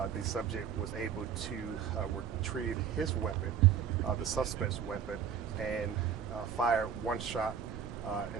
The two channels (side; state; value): left; quieter; 8.1 dB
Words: was able to retrieve his weapon, the suspect's weapon, and fired one shot